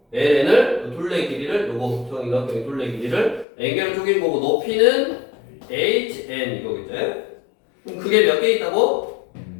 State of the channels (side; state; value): right; drops out; at 3.5 s